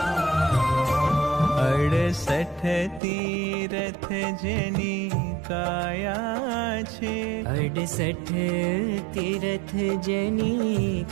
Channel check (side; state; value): left; drops out; at 3.0 s